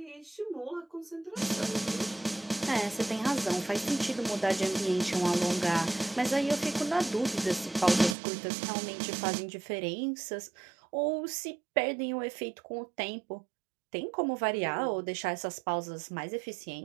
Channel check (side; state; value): left; drops out; at 8.2 s